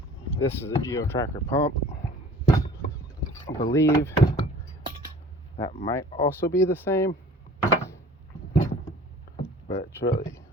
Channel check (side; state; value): both; normal; correlation 0.48